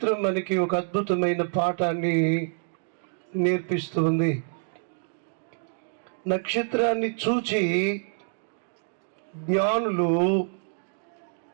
మనకి ఒక అద్భుతమైన పాఠాన్ని నేర్పిస్తుంది. నక్షత్రాన్ని చూచి జ్ఞానులు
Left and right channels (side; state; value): left; silent; digital silence